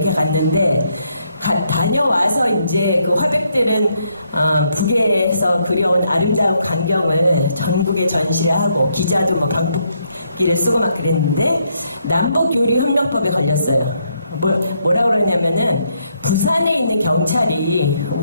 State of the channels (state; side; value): inverted; both; correlation -0.75